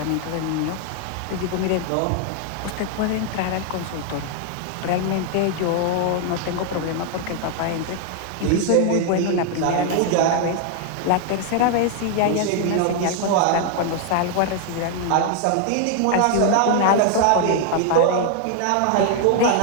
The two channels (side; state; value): both; different; correlation 0.00